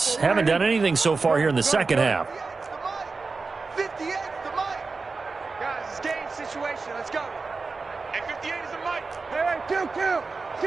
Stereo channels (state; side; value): quieter; left; 4.2 dB